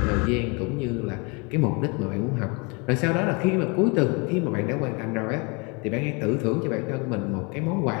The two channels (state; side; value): quieter; right; 30.7 dB